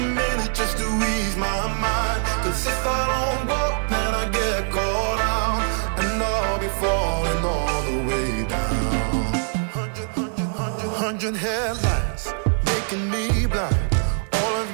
just to ease my mind. Cause if I don't walk, then I get caught out, and I'll be falling all the way down. 100 headlights making me blind. All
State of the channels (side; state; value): left; silent; 63 dB below the other